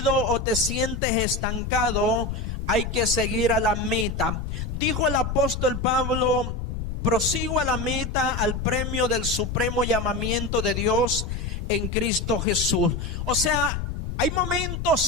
o te sientes estancado, hay que seguir a la meta. Dijo el apóstol Pablo, prosigo a la meta, al premio del supremo llamamiento de Dios en Cristo Jesús. O sea, hay momentos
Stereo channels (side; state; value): left; noise; rumble, 5 dB below the sound